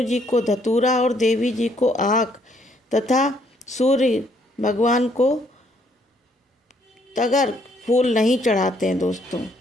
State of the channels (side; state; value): both; normal; correlation 0.68